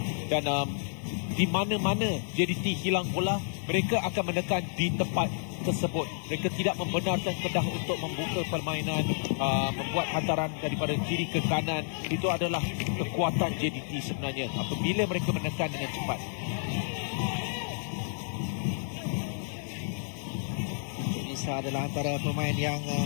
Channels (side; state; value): right; silent; 56 dB below the other